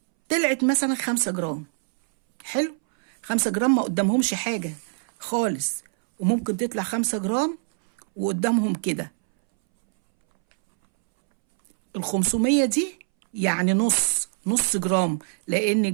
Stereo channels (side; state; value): left; silent; 63 dB below the other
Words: طلعت مثلا 5 جرام. حلو، 5 جرام ما قدامهمش حاجة خالص، وممكن تطلع 5 جرام وقدامهم كده 500 دي، يعني نص جرام. لأن